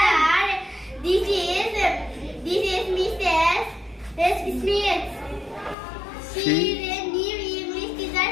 This is Mrs. Smith. She is a new English teacher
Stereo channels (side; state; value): right; drops out; at 5.8 s